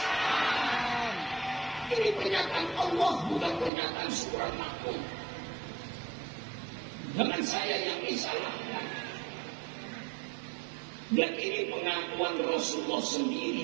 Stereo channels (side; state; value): left; drops out; at 3.7 s